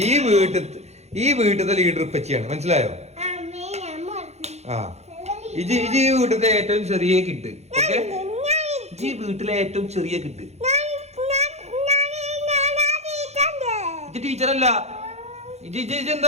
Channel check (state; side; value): late; left; 0.32 ms